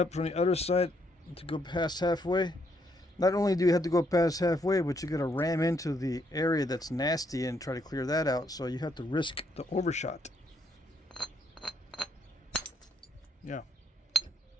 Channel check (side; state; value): both; normal; correlation 0.73